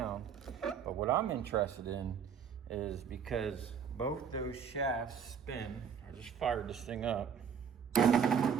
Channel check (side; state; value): left; quieter; 7.2 dB